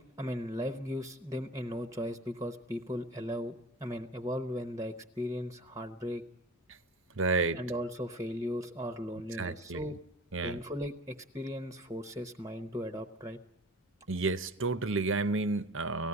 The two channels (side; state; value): both; normal; correlation 0.39